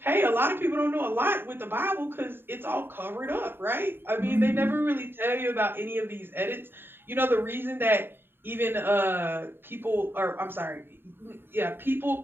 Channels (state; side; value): late; left; 0.10 ms